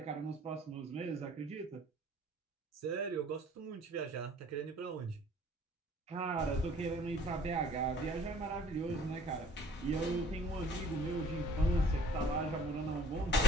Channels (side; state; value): both; normal; correlation 0.59